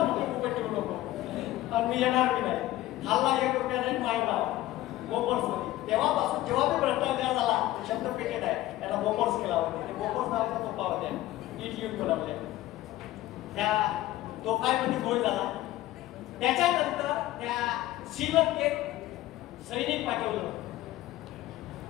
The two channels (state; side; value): quieter; right; 15.7 dB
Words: मी येणार नाही. खाल्ला 1 रुपया नाही माहिती बोफोर्स मध्ये. तेव्हापासून जेव्हा मी भ्रष्टाचार झाला शब्द पेटेड आहे त्याला बोफोर्स केला होता. बोफोर्स नावाचा तोफा होत्या. इट युद्ध बनवले. त्या तोफामध्ये गोळ झाला. त्याच्यानंतर त्या श्रीलंकेत सैनिक पाठवलं.